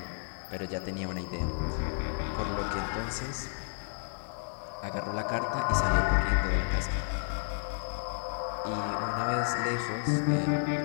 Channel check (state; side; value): silent; right; 57 dB below the other